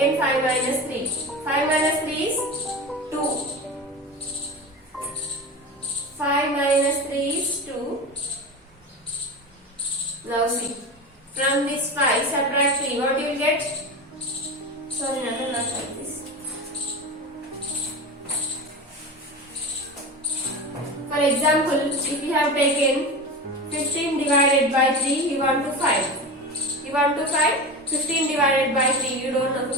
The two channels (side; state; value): both; normal; correlation 0.27